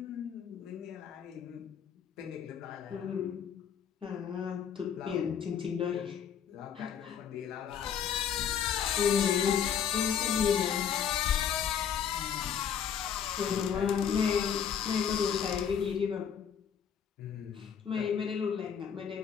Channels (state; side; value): quieter; right; 8.0 dB